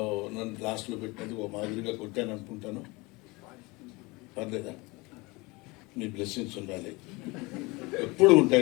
నన్ను లాస్ట్లో పెట్టినది ఓ మాదిరిగా కొట్టాను అనుకుంటాను. పర్లేదా? మీ బ్లెస్సింగ్స్ ఉండాలి, ఎప్పుడు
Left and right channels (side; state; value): right; quieter; 24.6 dB